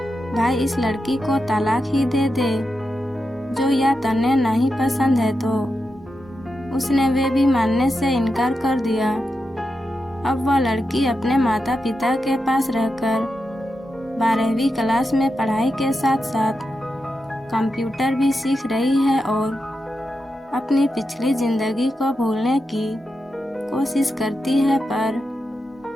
भाई इस लड़की को तलाक ही दे दे, जो या तन्ने नहीं पसंद है तो उसने वे भी मानने से इनकार कर दिया। अब वह लड़की अपने माता पिता के पास रहकर 12वीं क्लास में पढ़ाई के साथ साथ कंप्यूटर भी सीख रही है और अपनी पिछली जिंदगी को भूलने की कोशिश करती है, पर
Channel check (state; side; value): normal; both; correlation 0.88